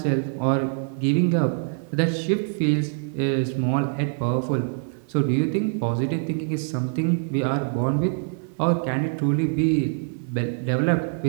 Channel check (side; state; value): left; silent; 61 dB below the other